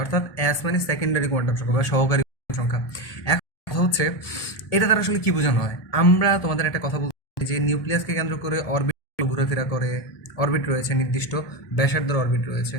অর্থাৎ এস মানে সেকেন্ডারি কোয়ান্টাম সংখ্যা বা সহকারী সংখ্যা। এখন কথা হচ্ছে এটা দ্বারা আসলে কি বোঝানো হয়। আমরা তোমাদের একটা কথা বলছি যে নিউক্লিয়াসকে কেন্দ্র করে অরবিট ঘোরাফেরা করে, অরবিট রয়েছে, নির্দিষ্ট ব্যাসার্ধের অরবিট রয়েছে।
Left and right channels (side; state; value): right; late; 1.2 ms